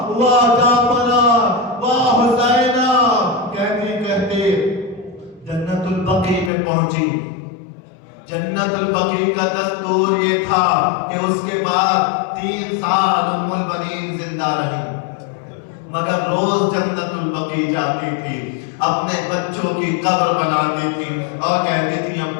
واہ جعفرہ، واہ حسینہ۔ کہتی کہتی جنت البقیع میں پہنچی۔ جنت البقیع کا دستور یہ تھا کہ اس کے بعد 3 سال ام المنین زندہ رہی، مگر روز جنت البقیع جاتی تھی، اپنے بچوں کی قبر بناتی تھی اور کہتی تھی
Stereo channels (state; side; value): drops out; right; at 6.5 s